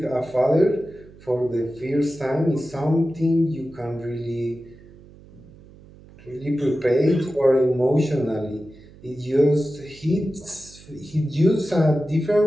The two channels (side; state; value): right; noise; hum, 22 dB below the sound